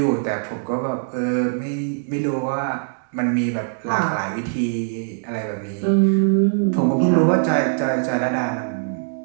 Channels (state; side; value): silent; left; digital silence